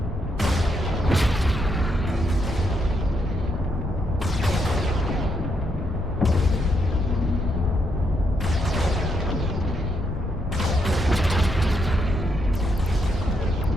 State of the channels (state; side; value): normal; both; correlation 0.78